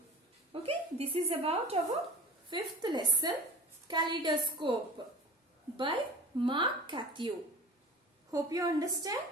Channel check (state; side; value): normal; both; correlation 0.40